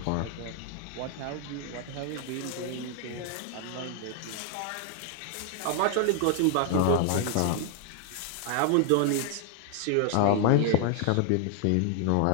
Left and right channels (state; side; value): different; both; correlation 0.00